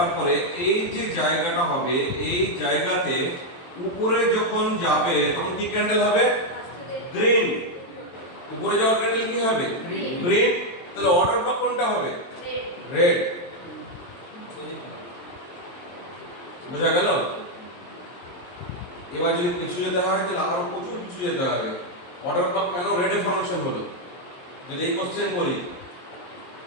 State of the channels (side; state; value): right; late; 23 ms